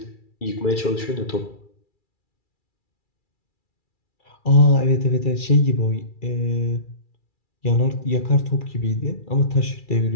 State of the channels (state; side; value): late; right; 2.3 ms